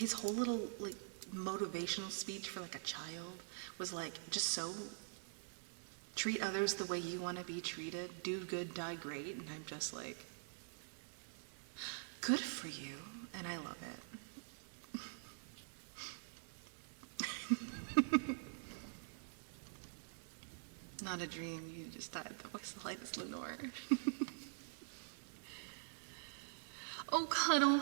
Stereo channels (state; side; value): silent; left; digital silence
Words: whole little like motivational speech for like a child was like just so treat others the way you want to be treated, do good, die great, and I'm just like, good for you, and I love it. Not a dream, you just died. The voice of light is Lenore. Oh, Cuddle,